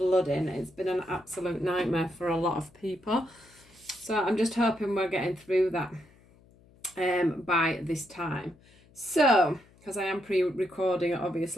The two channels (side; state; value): left; noise; hum, 28 dB below the sound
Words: It's been an absolute nightmare for a lot of people. So I'm just hoping we're getting through that by this time. So, because I am pre-recording it